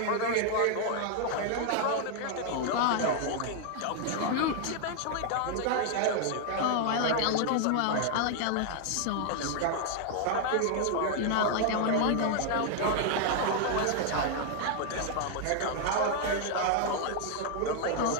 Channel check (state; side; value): different; both; correlation 0.00